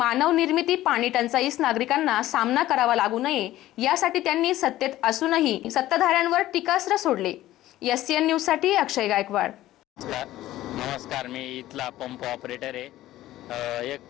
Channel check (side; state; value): right; quieter; 14.9 dB